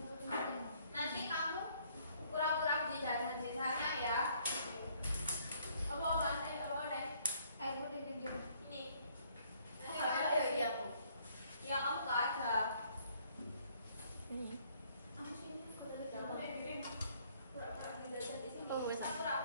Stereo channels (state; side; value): inverted; both; correlation -0.64